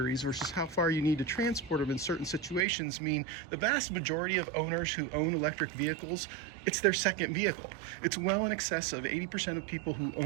versus how far you need to transport them in certain situations mean the vast majority of owners who own electric vehicles, it's their second vehicle. It's well in excess of 80% of people who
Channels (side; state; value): left; drops out; at 2.7 s